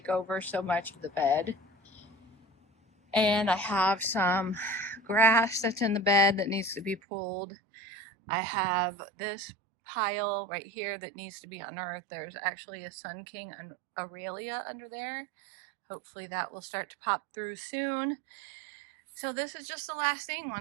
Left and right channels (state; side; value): drops out; left; at 7.0 s